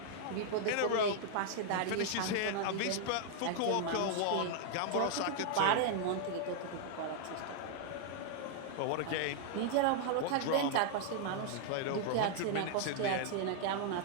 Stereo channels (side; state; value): both; different; correlation 0.00